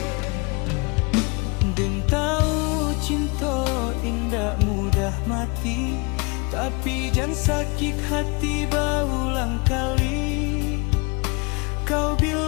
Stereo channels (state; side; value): quieter; right; 29.9 dB